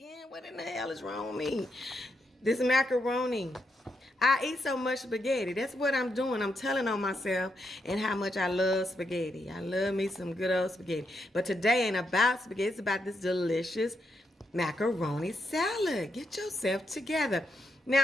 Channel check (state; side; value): normal; both; correlation 0.81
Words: What in the hell is wrong with me? This macaroni. I eat so much spaghetti. That's what I'm doing. I'm telling on myself and how much I love spaghetti. I love me some good old spaghetti. But today ain't about spaghetti. It's about this delicious macaroni salad. Get yourself together.